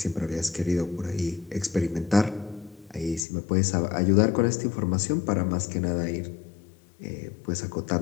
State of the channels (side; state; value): right; drops out; at 3.2 s